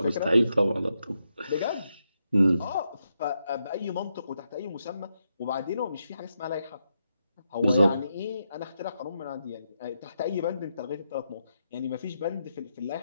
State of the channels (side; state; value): both; inverted; correlation -0.83